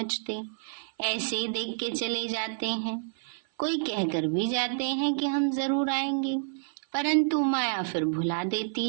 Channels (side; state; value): left; silent; 56 dB below the other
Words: ऐसे ही देख के चले जाते हैं। कोई कहकर भी जाते हैं कि हम जरूर आएंगे, परंतु माया फिर भुला